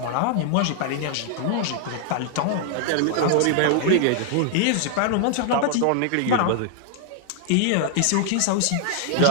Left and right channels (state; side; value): different; both; correlation 0.00